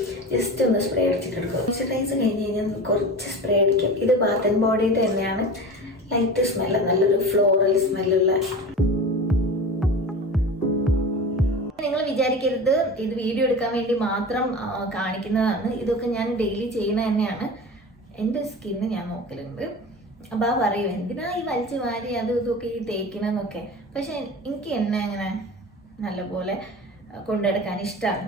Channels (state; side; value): normal; both; correlation 0.32